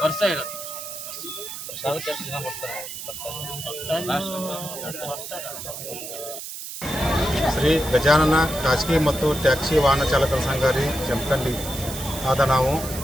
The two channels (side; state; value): right; noise; hiss, 9 dB below the sound